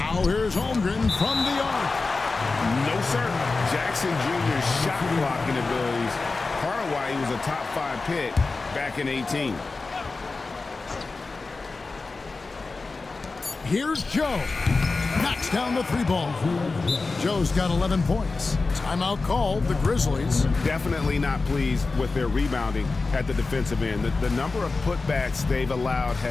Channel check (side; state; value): right; quieter; 3.8 dB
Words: here's Holmgren from the arc. No, sir. Jackson Jr.'s shot blocking abilities, part of why he was a top 5 pick back in 18. Here's Joe. Knocks down the 3-ball. Joe's got 11 points. Timeout called, the Grizzlies. Definitely not pleased with their rebounding at the defensive end. The number of putbacks they've allowed